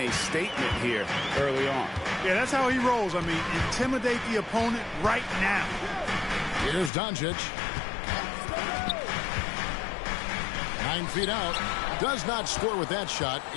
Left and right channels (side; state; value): right; drops out; at 6.9 s